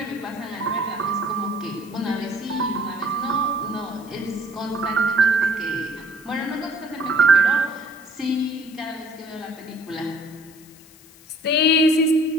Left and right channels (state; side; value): noise; left; hiss, 24 dB below the sound